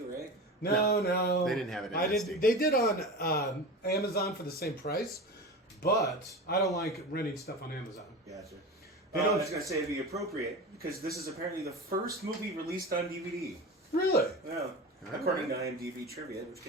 right? No. They didn't have it in SD. They did on Amazon for the same price, but I don't like renting stuff on Amazon. Gotcha. They I don't- was going to say it'd be appropriate because this is apparently the first movie released on DVD. Really? Yeah. According to IMDb trivia, which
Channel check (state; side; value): normal; both; correlation 0.29